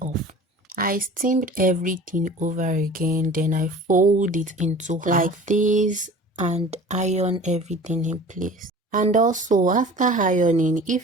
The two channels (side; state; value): both; normal; correlation 0.42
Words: off. I steamed everything over again, then I fold it into half like this and iron everything in place. And also after ironing,